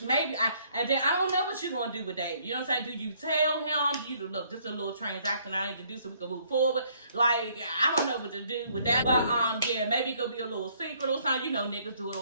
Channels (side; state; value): both; inverted; correlation -0.65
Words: and then I don't know what you're gonna do with Dave. You know what I'm saying? Do you tell him? Do you look, this is a little transaction I need to do so we can move forward? Like, I don't know what to do with that. But yeah, maybe it could be a little secret or something. You know, niggas do it